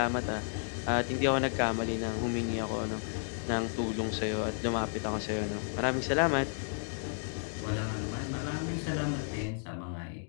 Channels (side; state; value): right; silent; digital silence